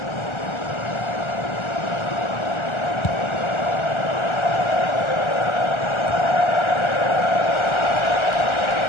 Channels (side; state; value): right; late; 1.4 ms